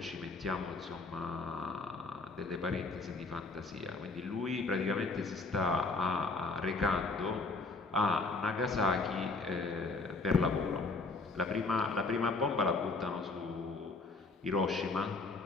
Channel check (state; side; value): quieter; right; 3.7 dB